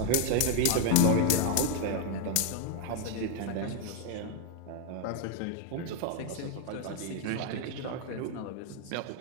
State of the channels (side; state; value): both; different; correlation 0.01